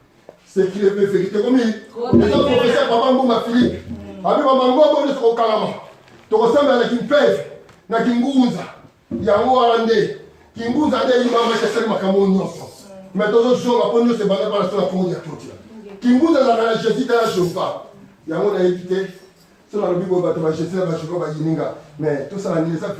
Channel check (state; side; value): identical; both; correlation 1.00